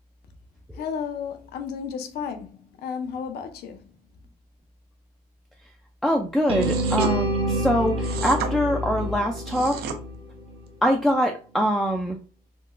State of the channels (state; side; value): normal; both; correlation 0.61